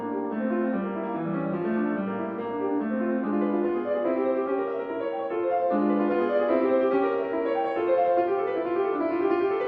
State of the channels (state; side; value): identical; both; correlation 1.00